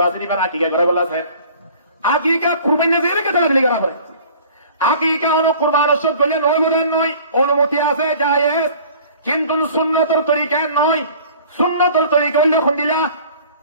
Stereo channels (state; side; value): inverted; both; correlation -0.48